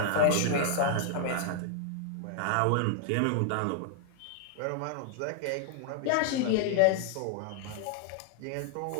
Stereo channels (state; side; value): different; both; correlation 0.00